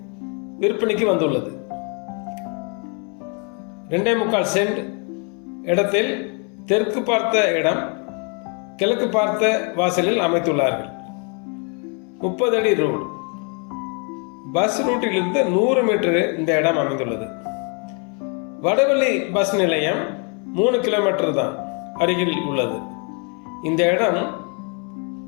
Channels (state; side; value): quieter; right; 37.0 dB